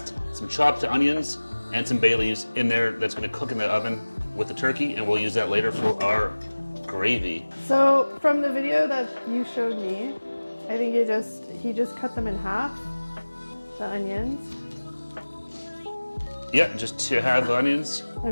some chopped onions, and some bay leaves in there that's going to cook in the oven with the turkey, and we'll use that later for our gravy. So from the video that you showed me, I think he just cut them in half, the onions. Yeah, just to have onions.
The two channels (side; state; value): both; inverted; correlation -1.00